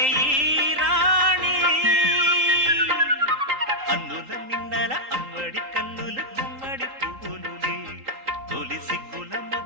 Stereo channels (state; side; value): late; left; 3.8 ms